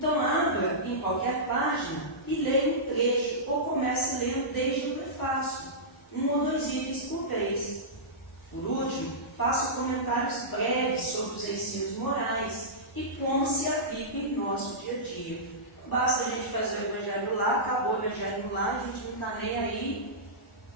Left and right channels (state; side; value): normal; both; correlation -0.16